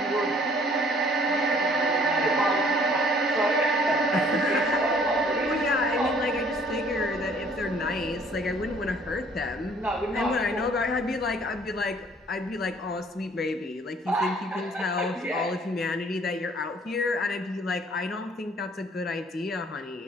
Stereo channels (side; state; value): both; normal; correlation 0.58